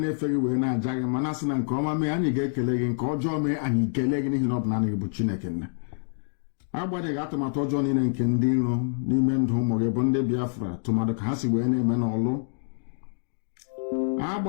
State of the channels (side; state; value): right; silent; digital silence